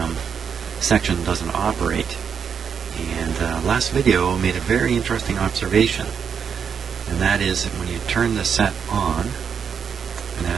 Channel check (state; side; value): quieter; left; 7.0 dB